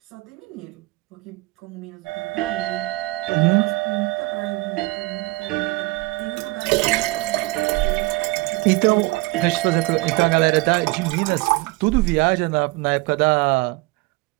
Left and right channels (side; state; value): left; quieter; 22.4 dB